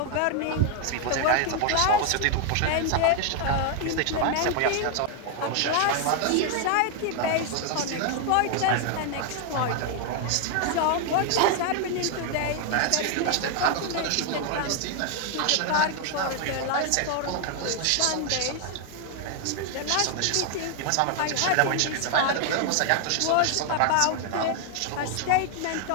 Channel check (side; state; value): both; different; correlation 0.00